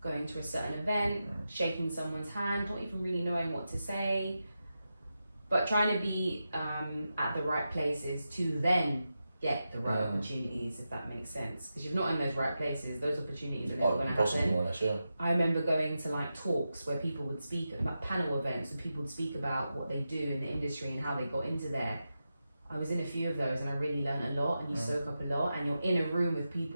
going to a certain event, shaking someone's hand, not even really knowing what to say, but trying to be at the right places to then get the right opportunities, if that makes sense. Because if you're not in those right places, those opportunities are never going to happen. I remember going to like talks where people would speak about panel events, and people would speak about what they do in the industry and how they got into there. I was in a few of those, and I really learned a lot, and you soak up a lot, and you're in a room with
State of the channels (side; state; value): both; inverted; correlation -0.90